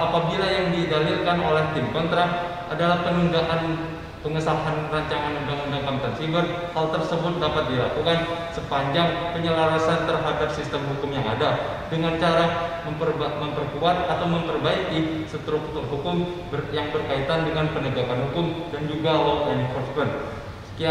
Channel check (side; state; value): both; identical; correlation 1.00